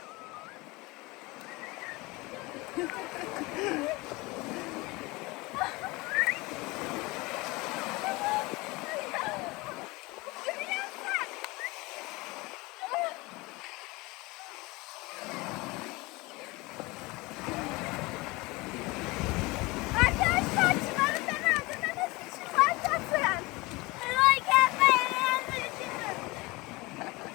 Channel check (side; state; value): right; quieter; 23.3 dB